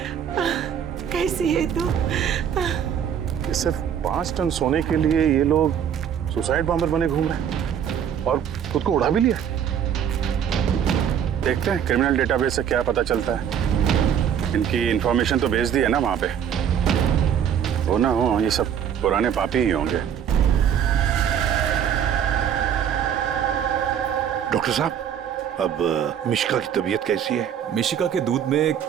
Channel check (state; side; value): quieter; left; 8.7 dB